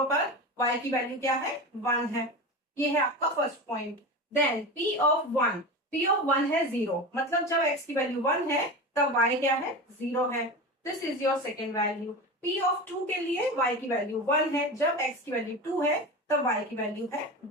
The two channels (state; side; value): normal; both; correlation 0.26